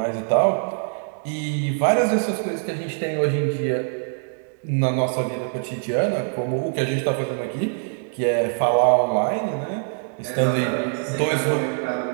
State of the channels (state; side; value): silent; left; digital silence